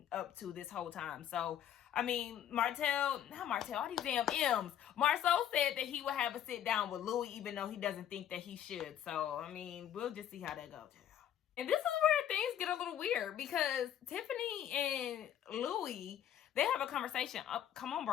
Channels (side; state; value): right; quieter; 10.4 dB